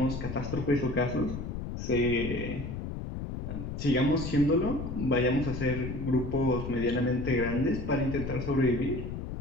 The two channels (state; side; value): noise; left; rumble, 6 dB below the sound